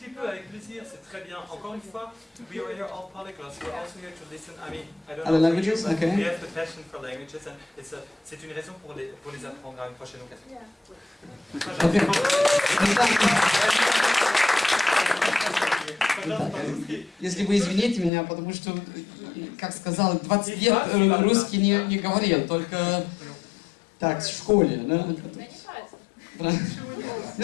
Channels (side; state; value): right; drops out; at 18.1 s